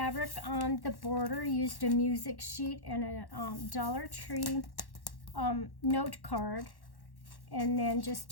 on the border, used a music sheet and a Dollar Tree note card, and then just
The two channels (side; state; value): right; late; 1.1 ms